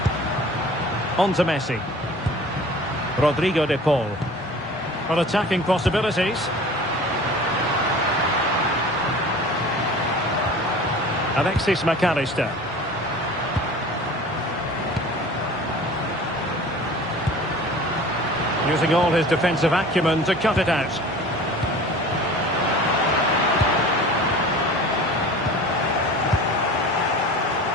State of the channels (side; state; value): both; normal; correlation 0.41